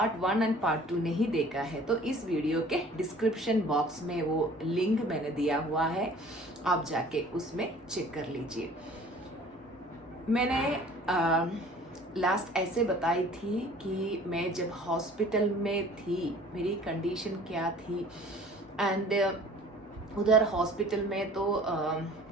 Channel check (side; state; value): both; normal; correlation 0.49